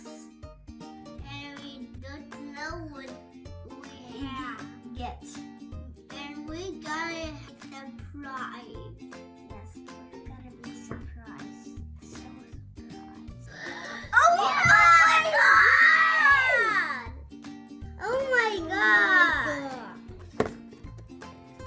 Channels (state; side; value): identical; both; correlation 1.00